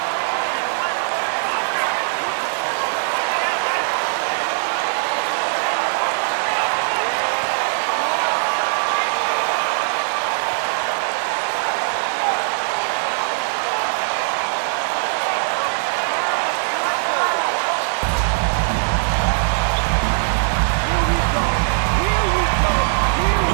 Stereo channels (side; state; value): left; silent; digital silence